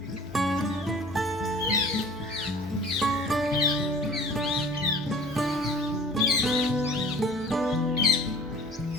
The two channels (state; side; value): normal; both; correlation 0.47